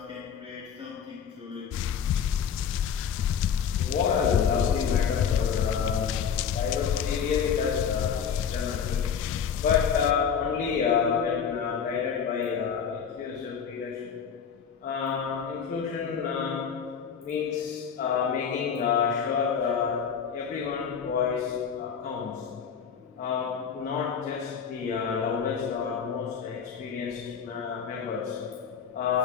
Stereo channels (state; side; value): quieter; right; 7.1 dB